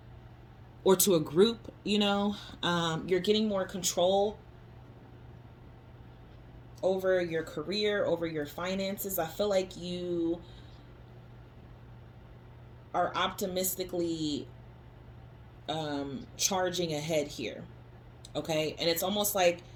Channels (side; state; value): both; identical; correlation 1.00